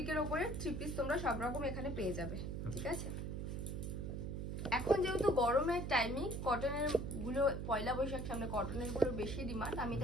উপরে 3 পিস তোমরা সব রকম এখানে পেয়ে যাবে, ঠিক আছে। এখন যেহেতু গরমের টাইমিং, কটনের গুলো পয়লা বৈশাখ সামনে, কটনের গুলো বেশি ডিমান্ড, আমি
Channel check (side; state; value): right; noise; hum, 4 dB below the sound